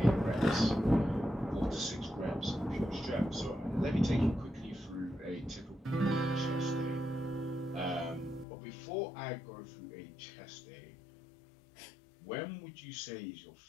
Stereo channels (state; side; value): drops out; right; at 8.5 s